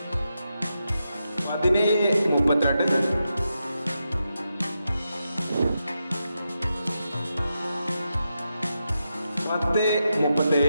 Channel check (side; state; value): both; inverted; correlation -0.87